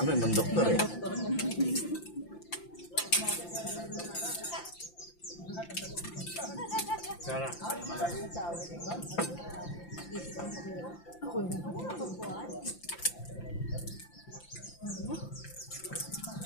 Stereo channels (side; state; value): right; late; 5.8 ms